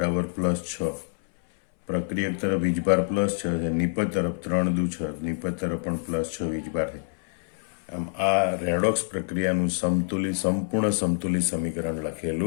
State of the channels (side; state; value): right; silent; 61 dB below the other